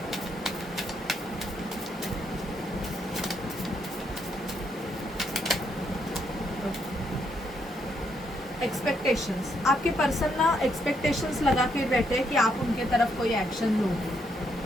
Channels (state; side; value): normal; both; correlation 0.75